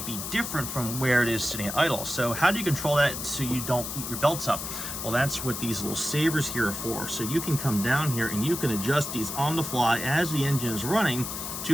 be different from where it is sitting at idle. So how do you control that so you don't eat your belts up? Well, that's what these little savers here are for. So you can come down here and you can adjust these on the fly as the engine is running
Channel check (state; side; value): noise; left; hiss, 6 dB below the sound